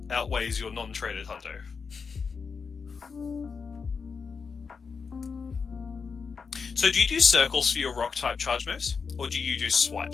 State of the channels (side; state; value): right; quieter; 5.4 dB